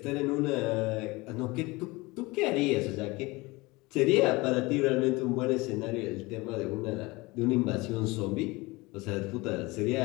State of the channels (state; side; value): quieter; right; 23.1 dB